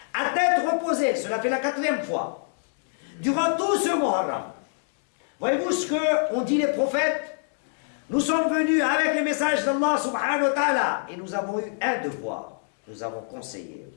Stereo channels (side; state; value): right; silent; 61 dB below the other